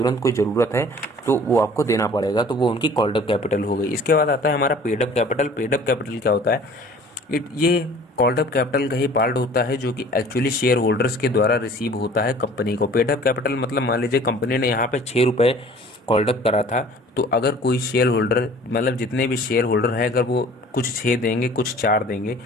कोई ज़रूरत है तो वो आपको देना पड़ेगा, तो वो उनकी कॉल्ड अप कैपिटल हो गई। इसके बाद आता है हमारा paid up capital. Paid up capital क्या होता है? ये कॉल्ड अप कैपिटल का ही पार्ट होता है जो कि एक्चुअली शेयर होल्डर्स के द्वारा रिसीव होता है कंपनी को। पेड अप कैपिटल मतलब मान लीजिए कंपनी ने यहाँ पे 6 रुपये कॉल्ड अप करा था, तो अगर कोई शेयर होल्डर, मतलब जितने भी शेयर होल्डर हैं, अगर वो कुछ 6 देंगे कुछ 4 देंगे,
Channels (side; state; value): both; normal; correlation 0.49